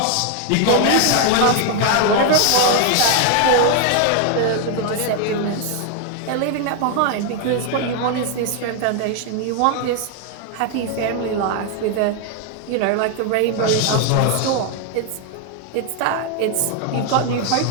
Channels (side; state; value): both; different; correlation 0.00